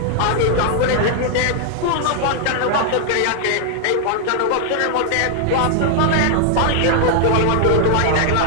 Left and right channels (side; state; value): both; different; correlation 0.00